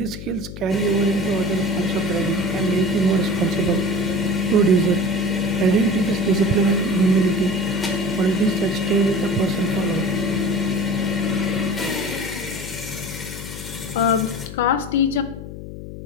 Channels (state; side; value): noise; left; hum, 11 dB below the sound